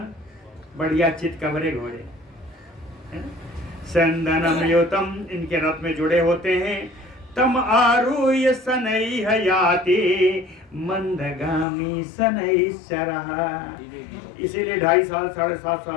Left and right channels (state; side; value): drops out; right; at 11.7 s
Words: बढ़िया चित कबरे घोड़े। चंदनम युतम, इनके रथ में जुड़े होते हैं। तम आरूह्य शनैः याति मंदगामी शनैश्चरः, इसीलिए 2.5 साल 7.5